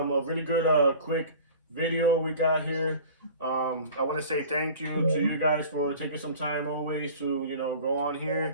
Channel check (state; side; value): inverted; both; correlation -0.42